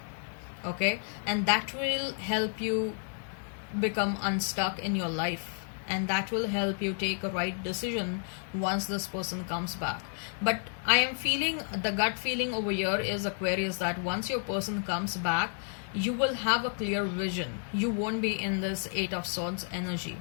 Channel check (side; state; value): right; silent; 57 dB below the other